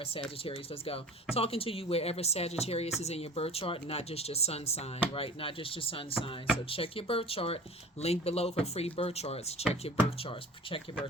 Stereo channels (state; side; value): normal; both; correlation 0.40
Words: Sagittarius. Let's go. Talking to you wherever Sagittarius is in your birth chart, not just your sun sign, right? Not just your sun sign. So check your birth chart. Link below for free birth charts. Check your birth charts. Check your